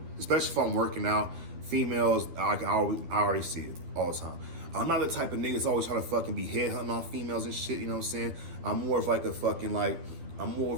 especially if I'm working out, females, I already see it all the time. I'm not the type of nigga that's always trying to fucking be headhunting on females and shit, you know what I'm saying? I'm more of like a fucking I'm more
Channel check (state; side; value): late; left; 12 ms